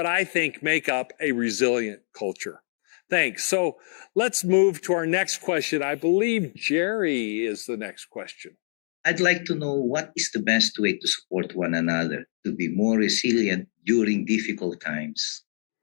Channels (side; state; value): right; silent; 62 dB below the other